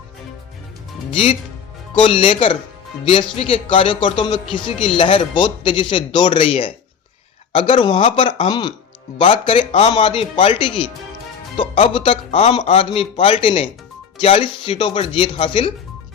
जीत को लेकर बीएसपी के कार्यकर्ताओं में खुशी की लहर बहुत तेजी से दौड़ रही है। अगर वहां पर हम बात करें आम आदमी पार्टी की, तो अब तक आम आदमी पार्टी ने 40 सीटों पर जीत हासिल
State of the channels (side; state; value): right; quieter; 7.0 dB